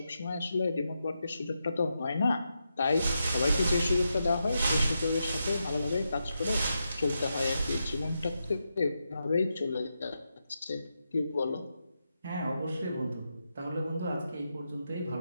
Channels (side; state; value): both; inverted; correlation -0.86